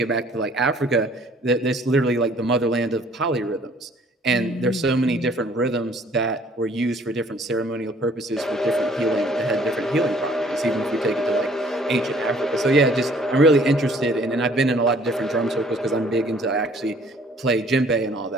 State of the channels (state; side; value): normal; both; correlation 0.57